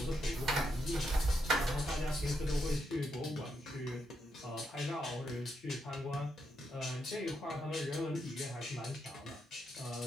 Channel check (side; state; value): both; normal; correlation 0.80